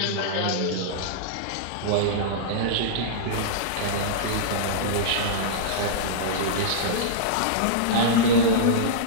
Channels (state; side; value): different; both; correlation -0.03